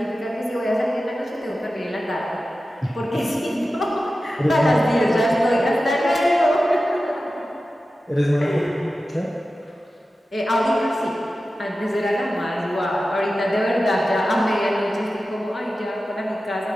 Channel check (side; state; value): both; normal; correlation 0.94